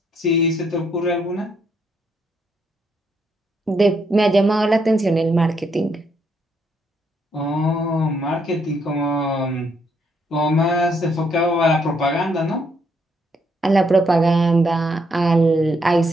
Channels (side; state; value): both; normal; correlation 0.73